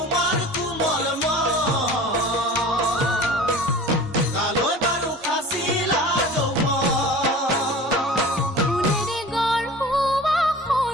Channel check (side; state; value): both; normal; correlation 0.40